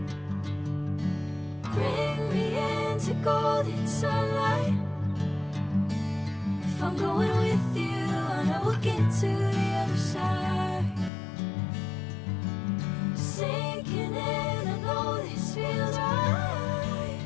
Bring me into golden sunlight. If I'm going with you, I know we'll get to the other side. Sinking in, I know this feels right.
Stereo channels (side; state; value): right; drops out; at 11.1 s